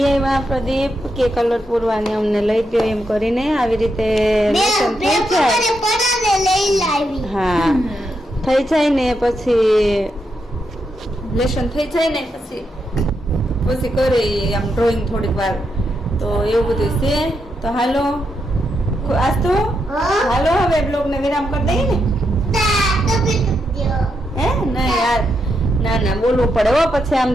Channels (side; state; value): both; normal; correlation 0.82